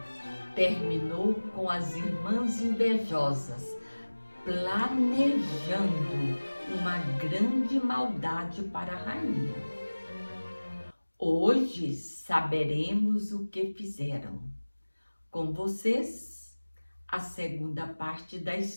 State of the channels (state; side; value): inverted; both; correlation -1.00